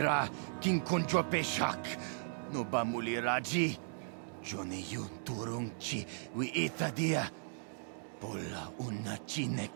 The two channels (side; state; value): left; silent; digital silence